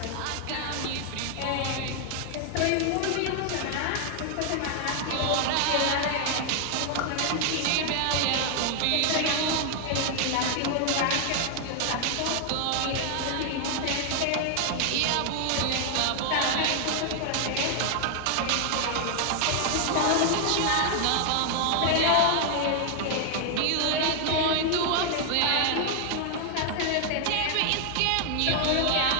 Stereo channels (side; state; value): both; different; correlation 0.00